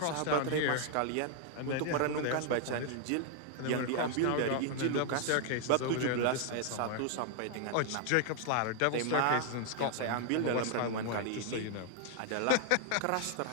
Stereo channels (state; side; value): different; both; correlation 0.00